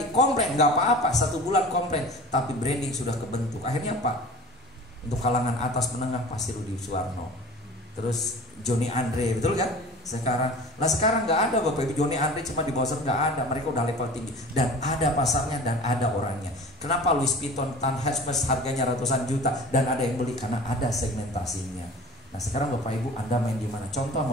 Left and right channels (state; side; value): normal; both; correlation 0.40